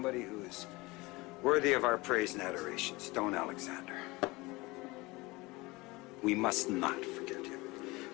who is worthy of our praise and adoration, Stone Alexander. We must not forget him.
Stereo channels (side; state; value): right; quieter; 22.8 dB